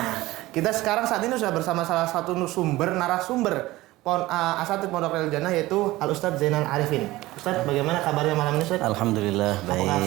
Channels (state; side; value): quieter; left; 18.2 dB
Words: kita sekarang saat ini sudah bersama salah satu narasumber Asatidz Pondok Riyadul Jannah, yaitu Al Ustadz Zainal Arifin. Ustadz, bagaimana kabarnya malam ini, Ustadz? Alhamdulillah baik. Apakah